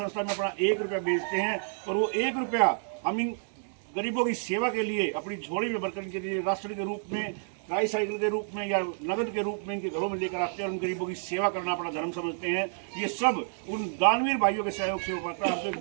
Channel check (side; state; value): left; silent; digital silence